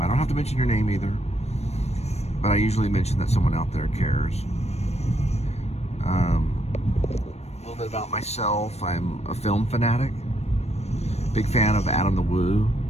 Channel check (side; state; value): right; late; 0.31 ms